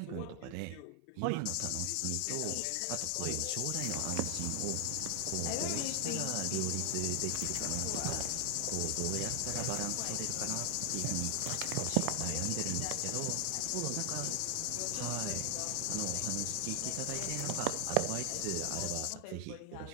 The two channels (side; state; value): both; different; correlation 0.00